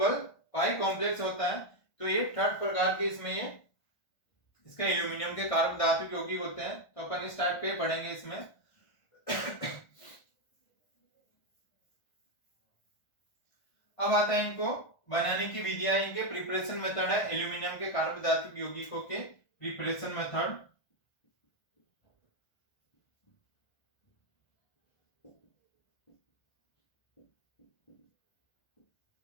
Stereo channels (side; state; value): right; late; 1.4 ms